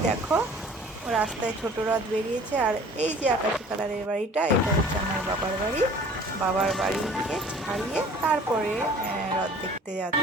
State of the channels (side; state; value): both; normal; correlation 0.49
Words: দেখো রাস্তায় ছোট রথ বেরিয়েছে, আর এই যে আকাশি কালারের বাড়িটা, এটা হচ্ছে আমার বাবার বাড়ি। বাবার বাড়িকে ছাড়িয়ে তারপরে রথ দেখতে